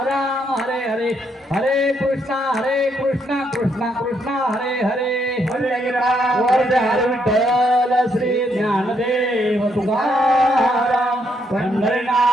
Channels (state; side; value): normal; both; correlation 0.74